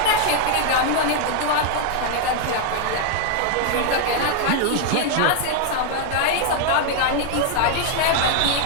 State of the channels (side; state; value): both; different; correlation 0.00